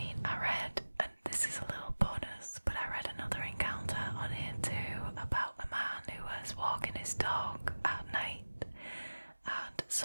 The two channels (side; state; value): both; inverted; correlation -1.00